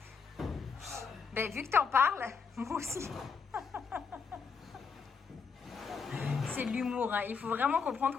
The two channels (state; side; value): quieter; right; 5.6 dB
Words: Ben, vu que t'en parles, moi aussi. C'est de l'humour. Hein. Il faut vraiment comprendre